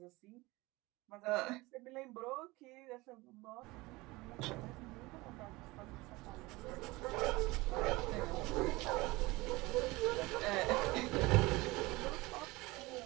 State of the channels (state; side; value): quieter; left; 21.9 dB